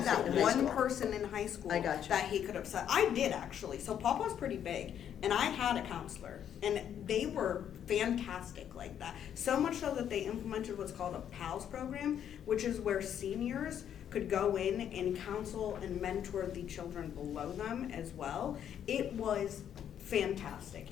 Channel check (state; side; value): quieter; right; 9.5 dB